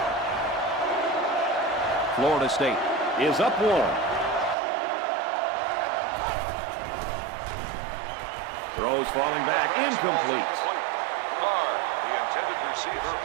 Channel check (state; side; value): drops out; left; at 4.5 s